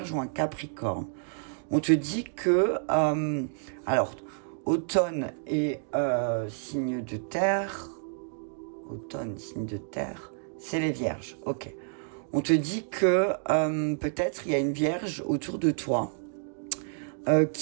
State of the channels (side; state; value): left; silent; digital silence